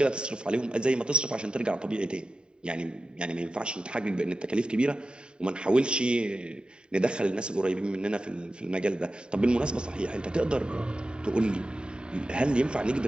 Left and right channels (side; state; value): left; late; 0.049 ms